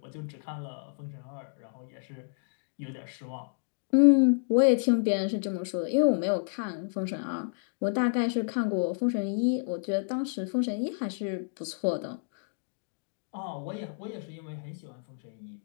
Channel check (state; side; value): silent; right; digital silence